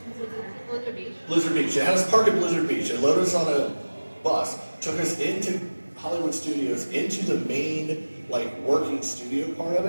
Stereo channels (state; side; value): inverted; both; correlation -1.00